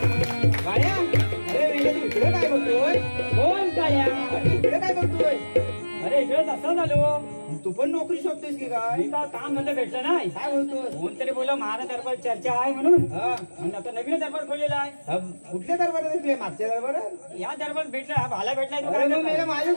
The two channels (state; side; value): inverted; both; correlation -1.00